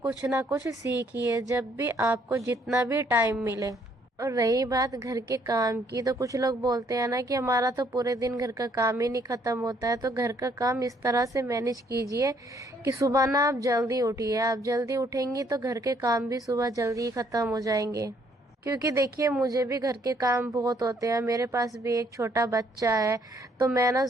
ना कुछ सीखिए जब भी आपको जितना भी टाइम मिले। और रही बात घर के काम की, तो कुछ लोग बोलते हैं ना कि हमारा तो पूरे दिन घर का काम ही नहीं खत्म होता है। तो घर का काम इस तरह से मैनेज कीजिए कि सुबह ना आप जल्दी उठिए। आप जल्दी उठेंगी तो घर के काम भी सुबह जल्दी ही खत्म हो जाएंगे। क्योंकि देखिए मुझे भी घर के काम बहुत होते हैं, मेरे पास भी एक छोटा बच्चा है। तो मैं ना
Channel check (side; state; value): both; normal; correlation 0.66